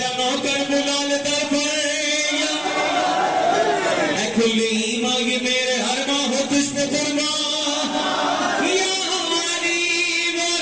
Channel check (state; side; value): identical; both; correlation 1.00